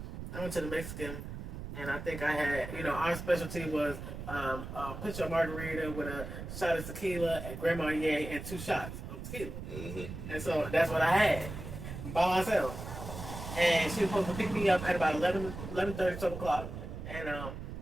I went to the Mexican, and I think I had, our specialty was a pitcher of margarita with a shot of tequila at Grand Marnier and 2 shots of tequila. Mm-hmm. And so that's what I had by myself. And she was supposed to pick me up at about 11:30, 12 o'clock. And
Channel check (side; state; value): right; noise; rumble, 8 dB below the sound